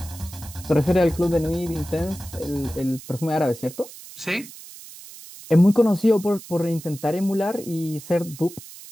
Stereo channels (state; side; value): noise; right; hiss, 16 dB below the sound